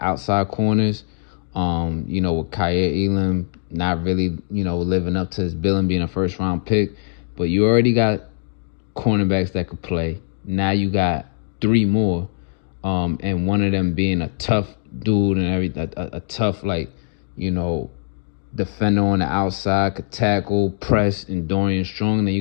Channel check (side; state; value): right; silent; digital silence